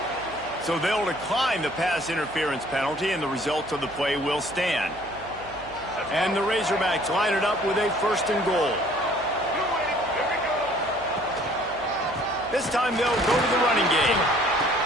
So they'll decline the pass interference penalty, and the results of the play will stand. And the Razorbacks line it up with a 1st and goal. This time they'll go to the running game.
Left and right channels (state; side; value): noise; right; hum, 20 dB below the sound